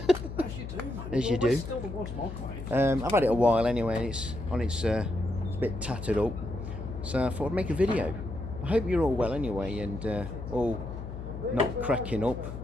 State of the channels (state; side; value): noise; left; hum, 9 dB below the sound